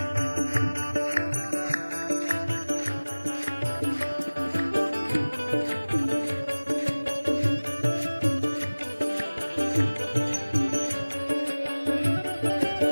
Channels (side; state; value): both; inverted; correlation -1.00